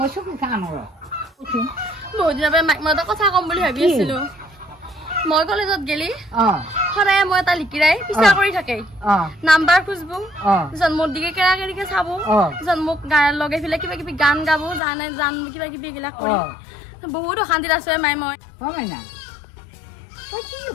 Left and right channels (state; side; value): drops out; right; at 14.8 s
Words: চকু খা নৰ বহুত দিনৰ মাক মই এটা কথা কম বুলি ভাবি আছিলো মই কলেজত গেলি সদায় মই এটা লিকিৰাই পিছা কৰি থাকে নাম্বাৰ খুঁজবো মোৰ দিকে কেৰা কেৰিকে চাব মোক লগে ফেলে কিবা কিবি গান গাব জান কিবা কিবি এইবিলাক কৰি বহুত অশান্তিত আছো মাই মই মাইনা তই কি